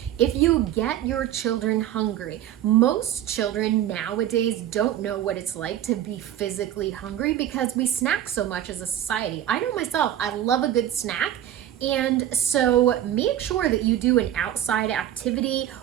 If you get your children hungry, most children nowadays don't know what it's like to be physically hungry because we snack so much as a society. I know myself, I love a good snack. And so make sure that you do an outside activity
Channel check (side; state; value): left; quieter; 11.6 dB